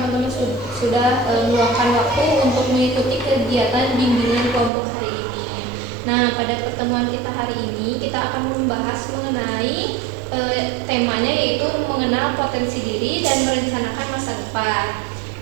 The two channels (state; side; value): drops out; left; at 4.7 s